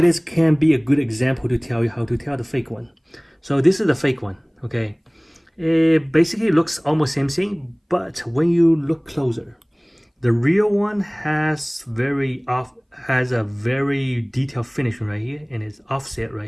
can be a good example to tell you how to tell the fake one. So this is the fake one. Okay, it basically looks almost same thing, but when you look closer, the real one has a very detailed finishing right here, and it's offset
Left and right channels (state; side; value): identical; both; correlation 1.00